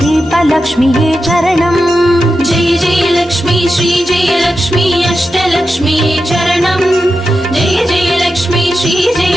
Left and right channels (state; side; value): normal; both; correlation 0.90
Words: தீபலக்ஷ்மியே சரணம் ஜெய ஜெயலக்ஷ்மி ஸ்ரீ ஜெயலக்ஷ்மி அஷ்டலக்ஷ்மியே சரணம் ஜெய ஜெயலக்ஷ்மி ஸ்ரீ